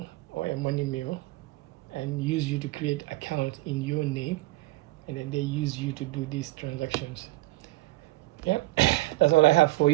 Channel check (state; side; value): quieter; left; 20.2 dB